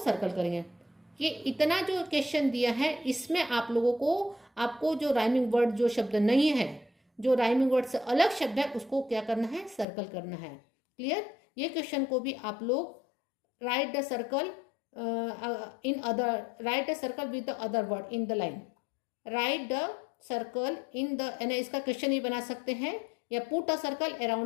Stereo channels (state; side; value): drops out; right; at 9.9 s